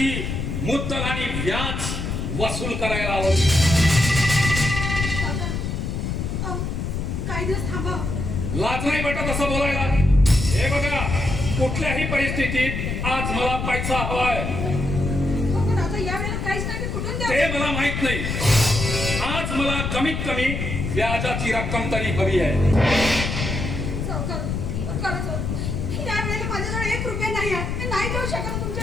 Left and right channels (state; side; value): noise; left; rumble, 3 dB below the sound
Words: मुद्दल आणि व्याज वसूल करायला आलो. काही दिवस थांबा. लाज नाही वाटत असं बोलायला? हे बघा, कुठल्याही परिस्थितीत आज मला पैसा हवाय. पण आता या वेळेला काहीच नाही, कुठून द्या? ते मला माहित नाही. आज मला कमीत कमी व्याजाची रक्कम तरी हवी आहे. या वेळेला माझ्याजवळ 1 रुपया नाही आहे. मी नाही देऊ शकत तुमचे